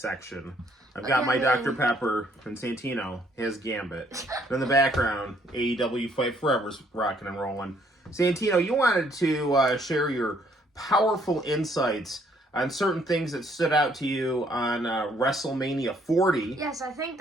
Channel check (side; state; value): both; normal; correlation 0.66